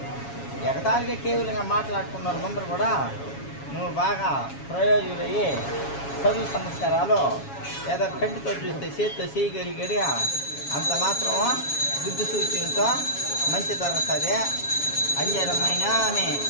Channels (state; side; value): late; right; 7.2 ms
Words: ఎగతాళిగా కేవలంగా మాట్లాడుకున్నారు ముందర కూడా నువ్వు బాగా ప్రయోజకులయ్యి చదువు సంస్కారాలు ఏదో కంటితో చూస్తే చేతితో చేయగలిగడి అంత మాత్రం బుద్ధి సూచనతో మంచి జరుగుతుంది అంజరమైన ఆమె